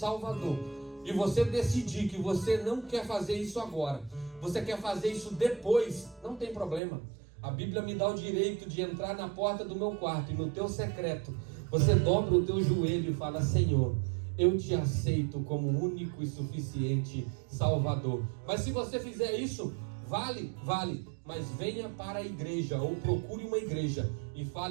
e você decidir que você não quer fazer isso agora, você quer fazer isso depois, não tem problema. A Bíblia me dá o direito de entrar na porta do meu quarto e no teu secreto, você dobra o teu joelho e fala: Senhor, eu te aceito como único e suficiente Salvador. Mas se você fizer isso, vale, mas venha para a igreja, ou procure uma igreja e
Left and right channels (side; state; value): left; drops out; at 6.8 s